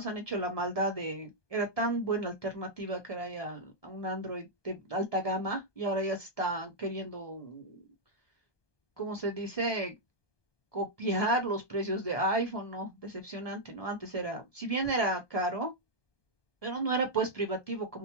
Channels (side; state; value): right; late; 1.2 ms